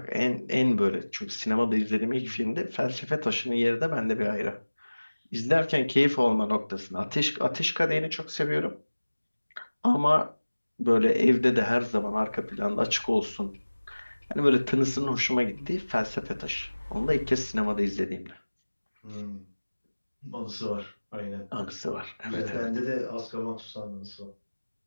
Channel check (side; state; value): both; inverted; correlation -1.00